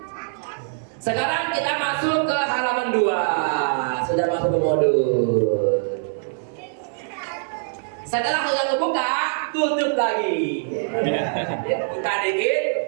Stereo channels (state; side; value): silent; left; digital silence